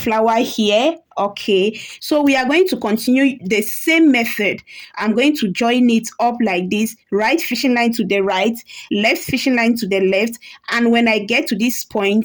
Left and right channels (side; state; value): both; identical; correlation 1.00